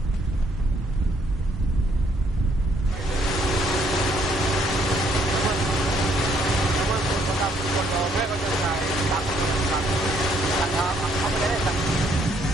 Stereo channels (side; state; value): both; normal; correlation 0.68